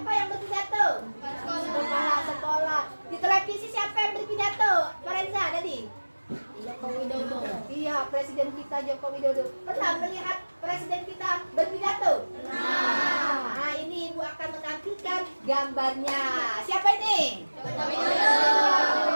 yang berpidato? Kepala sekolah. Di televisi siapa yang berpidato? Farenza tadi. Joko Widodo. Iya, Presiden kita Joko Widodo. Pernah melihat Presiden kita berpidato? Nah, ini ibu akan menampilkan gambarnya. Siapa ini? Joko Widodo.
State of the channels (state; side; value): inverted; both; correlation -1.00